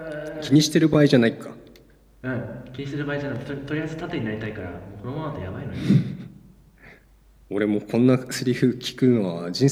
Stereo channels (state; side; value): identical; both; correlation 1.00